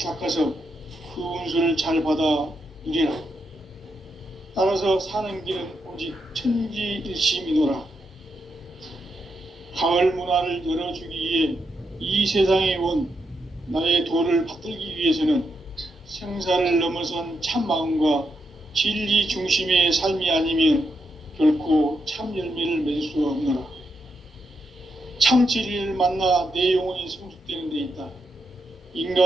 그 운수를 잘 받아 누리라. 따라서 사는 길은 오직 천지일심이노라. 가을 문화를 열어주기 위해 이 세상에 온 나의 도를 받들기 위해서는 생사를 넘어선 참 마음과 진리 중심의 삶이 아니면 결코 참 열매를 맺을 수 없노라. 참 진리를 만나 내 영혼이 성숙되는 데 있다.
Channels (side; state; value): both; normal; correlation 0.83